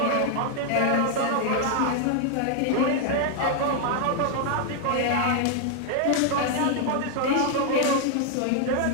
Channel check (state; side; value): different; both; correlation 0.00